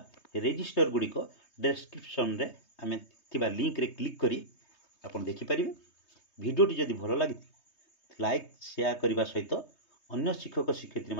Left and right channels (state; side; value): late; right; 3.2 ms